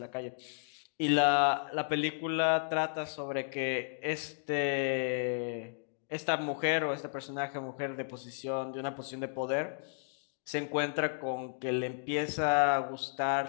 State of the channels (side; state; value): right; silent; digital silence